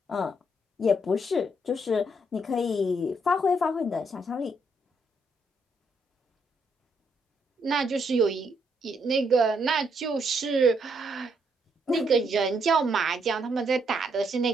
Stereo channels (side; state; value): both; normal; correlation 0.75